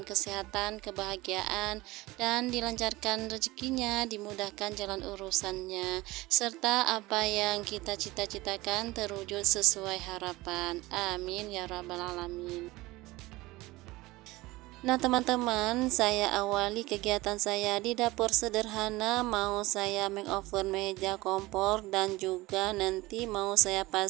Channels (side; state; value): left; quieter; 20.1 dB